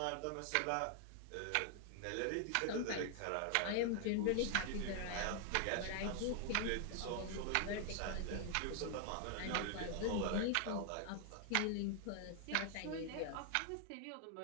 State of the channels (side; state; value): both; different; correlation 0.00